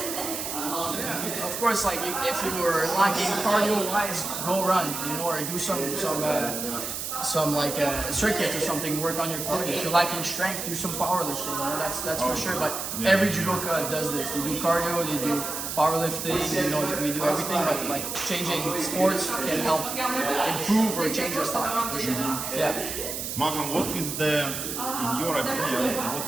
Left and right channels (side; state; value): right; noise; hiss, 5 dB below the sound